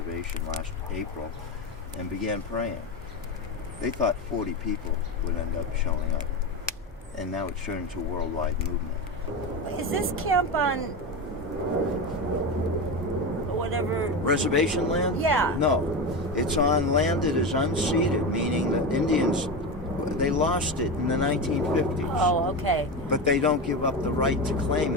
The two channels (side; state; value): both; normal; correlation 0.19